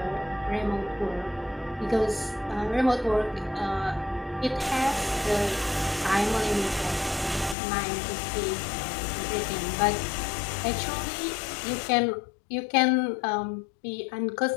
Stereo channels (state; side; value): drops out; right; at 7.6 s